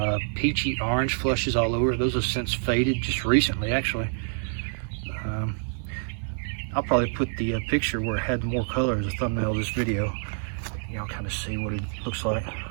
peachy orange flushes all over it. Those have since faded just recently, actually. I'll probably put the picture where it had more color as a thumbnail of this video. Y'all kind of see what it looks like.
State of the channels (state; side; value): silent; left; 60 dB below the other